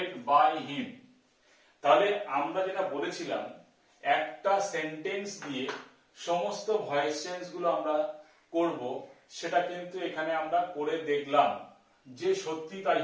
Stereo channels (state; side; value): identical; both; correlation 1.00